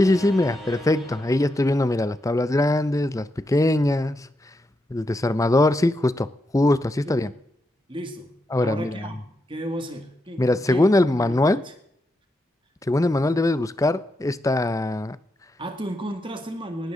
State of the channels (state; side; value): normal; both; correlation 0.84